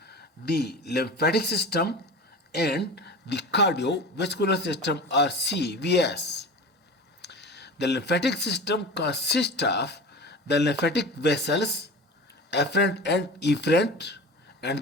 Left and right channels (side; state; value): both; normal; correlation 0.32